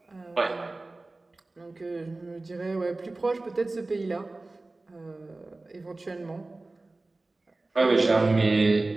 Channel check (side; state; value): left; quieter; 3.1 dB